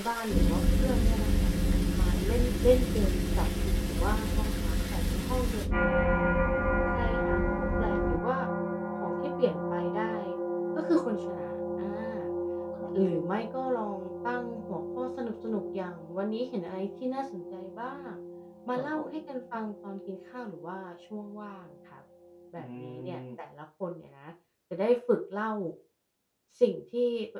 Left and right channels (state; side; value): identical; both; correlation 1.00